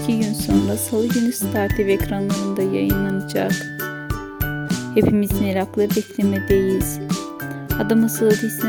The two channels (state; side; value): identical; both; correlation 1.00